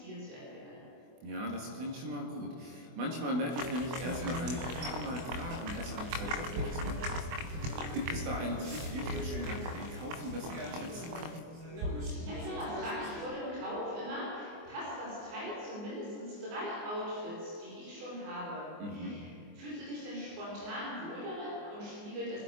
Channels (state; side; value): late; left; 24 ms